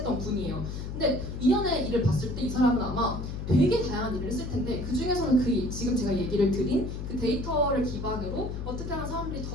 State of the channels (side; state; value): left; noise; hum, 6 dB below the sound